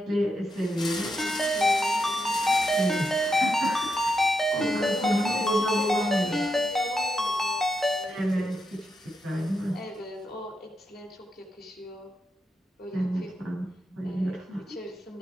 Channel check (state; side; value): normal; both; correlation 0.84